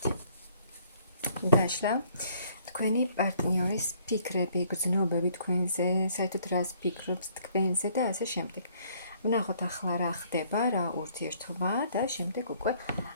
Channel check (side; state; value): both; inverted; correlation -0.63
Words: დაშლა. თქვენი პარტნიორის ფიქრები, გრძნობები თქვენზე, საერთოდ რას ფიქრობს თქვენზე და ასე შემდეგ. ვნახოთ ახლა რა ხდება, რა ურთიერთობა და შემდეგ უკვე